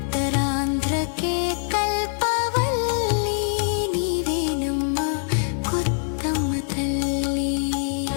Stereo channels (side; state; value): right; silent; 63 dB below the other